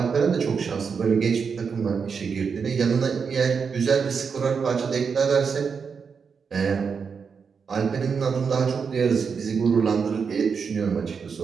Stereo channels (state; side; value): quieter; left; 5.9 dB